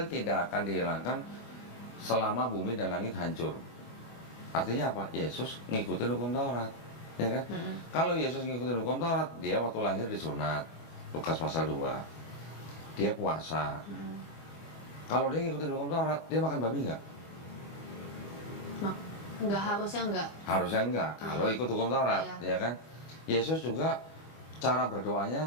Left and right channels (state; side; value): late; right; 25 ms